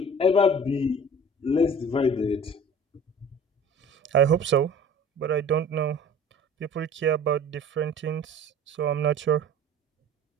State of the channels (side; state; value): both; normal; correlation 0.44